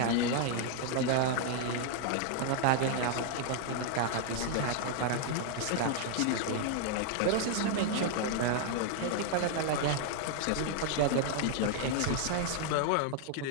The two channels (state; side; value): different; both; correlation 0.00